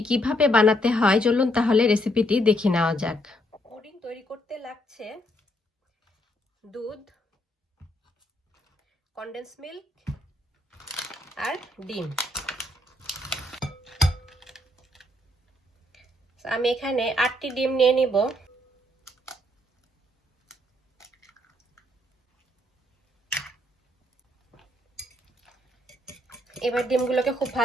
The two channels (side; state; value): both; normal; correlation 0.72